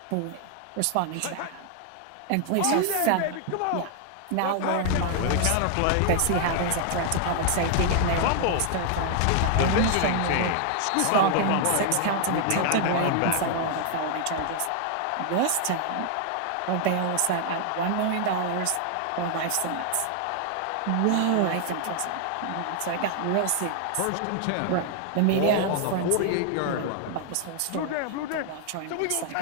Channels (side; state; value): both; different; correlation 0.00